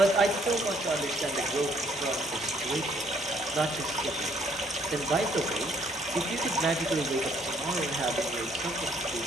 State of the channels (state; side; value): normal; both; correlation 0.65